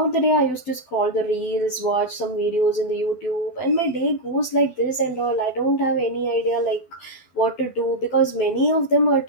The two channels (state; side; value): late; right; 12 ms